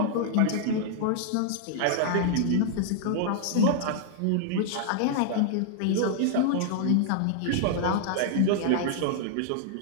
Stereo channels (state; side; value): different; both; correlation 0.00